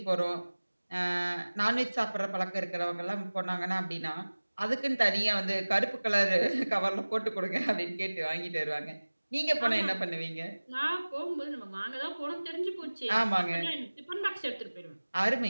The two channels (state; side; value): inverted; both; correlation -1.00